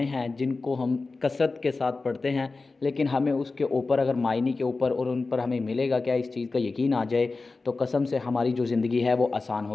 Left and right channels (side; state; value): right; quieter; 3.8 dB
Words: हैं जिनको हम कसरत के साथ पढ़ते हैं, लेकिन हमें उसके ऊपर अगर मायने के ऊपर और उन पर हमें मिलेगा क्या, इस चीज़ का यकीन आ जाए तो कसम से हमारी जो ज़िंदगी है वो आसान